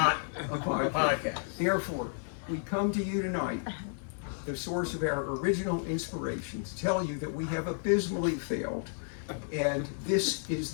a podcast. Therefore, we come to you tonight, the source of our original inspiration, to tell you that we have abysmally failed, and this is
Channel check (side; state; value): right; silent; digital silence